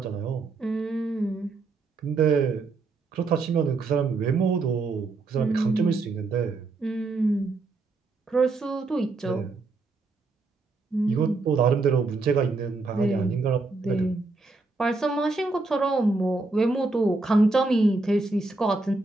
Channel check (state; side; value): quieter; left; 3.6 dB